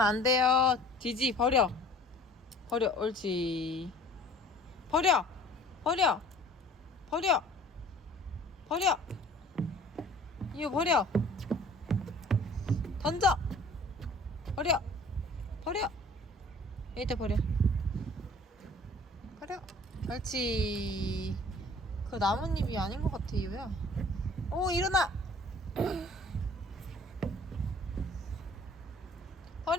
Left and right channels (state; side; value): normal; both; correlation 0.50